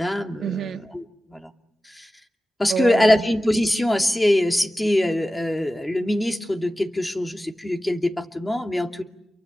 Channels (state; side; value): normal; both; correlation 0.95